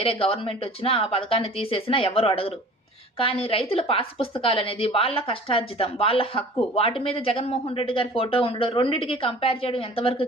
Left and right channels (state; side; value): normal; both; correlation 0.45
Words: గవర్నమెంట్ వచ్చినా ఆ పథకాన్ని తీసేసినా ఎవరు అడగరు. కానీ రైతుల పాస్ పుస్తకాలు అనేది వాళ్ళ కష్టార్జితం, వాళ్ళ హక్కు. వాటి మీద జగన్మోహన్ రెడ్డి గారి ఫోటో ఉండడం, రెండింటికి కంపేర్ చేయడం ఎంతవరకు